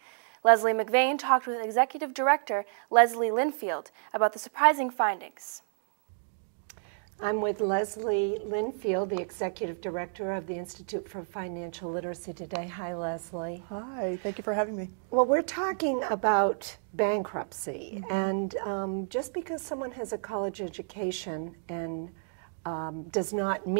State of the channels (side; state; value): left; silent; digital silence